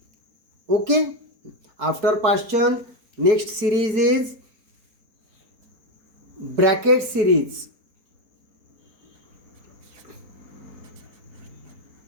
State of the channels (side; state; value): left; late; 4.4 ms